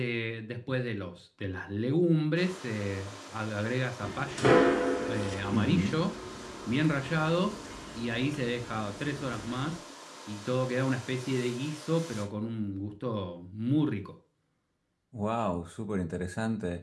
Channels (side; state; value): both; identical; correlation 1.00